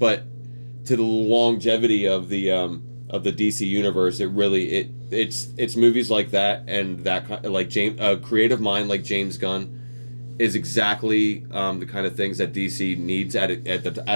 to the longevity of the DC universe, it's movies like that and that like creative mind like James Gunn is exactly the kind of things that DC needs at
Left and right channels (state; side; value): inverted; both; correlation -1.00